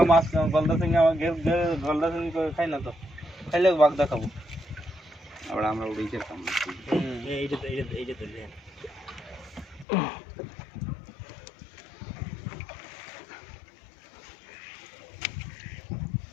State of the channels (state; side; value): drops out; right; at 9.9 s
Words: মাছ গলদা চিংড়ি আমার গলদা চিংড়ি করে খাই না তো খাইলে বাঘদা খাবো আমরা উড়েই যেতাম এইটা ধরলে